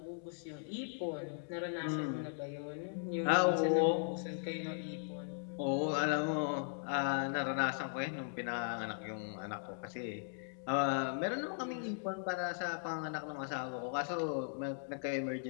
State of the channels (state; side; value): silent; right; digital silence